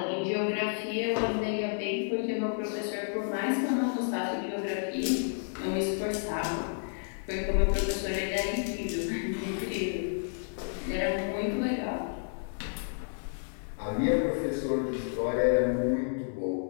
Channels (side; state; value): right; silent; digital silence